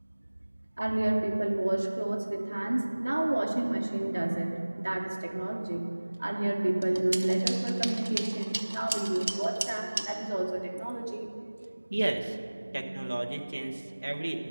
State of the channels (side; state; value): both; inverted; correlation -1.00